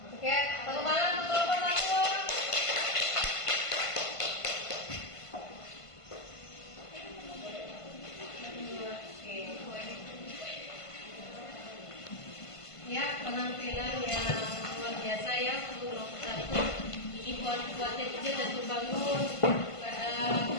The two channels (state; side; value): late; right; 1.5 ms